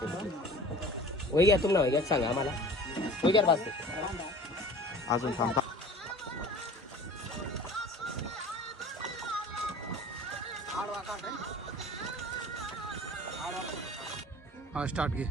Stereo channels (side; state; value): both; normal; correlation 0.43